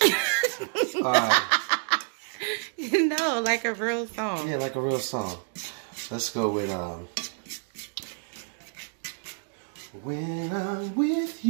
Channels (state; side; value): silent; left; 59 dB below the other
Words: mind. No, like a real song. Yeah, like a real song. Let's go with when I'm with